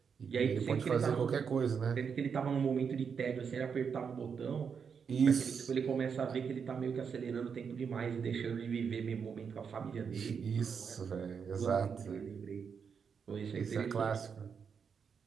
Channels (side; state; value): left; quieter; 6.5 dB